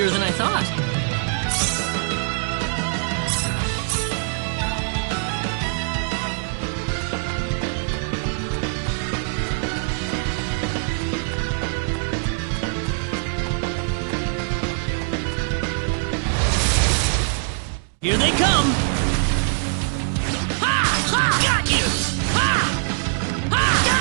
than I thought. Here they come! Got you!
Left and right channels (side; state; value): left; silent; 64 dB below the other